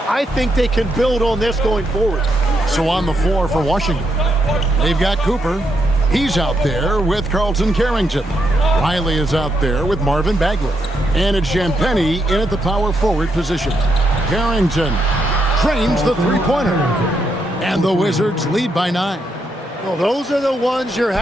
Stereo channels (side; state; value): both; normal; correlation 0.79